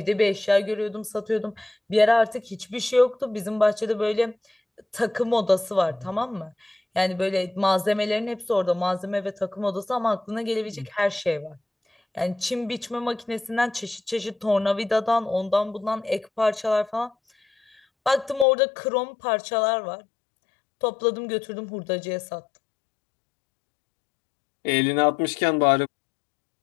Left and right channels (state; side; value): drops out; right; at 18.4 s